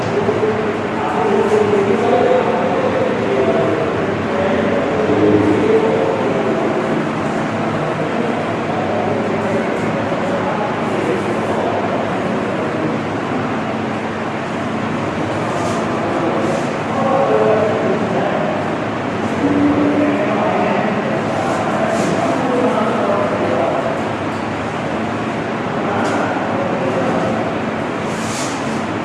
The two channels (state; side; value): identical; both; correlation 1.00